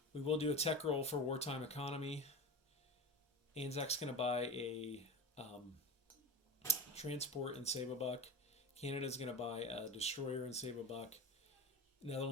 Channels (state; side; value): normal; both; correlation 0.26